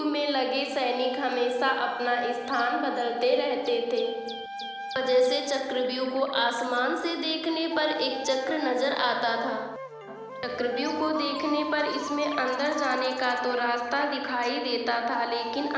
में लगे सैनिक हमेशा अपना स्थान बदलते रहते थे। वजह से चक्रव्यूह को आसमान से देखने पर एक चक्र नजर आता था। चक्रव्यूह को देखने पर इसमें अंदर जाने का तो रास्ता दिखाई देता था, लेकिन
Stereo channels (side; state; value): both; identical; correlation 1.00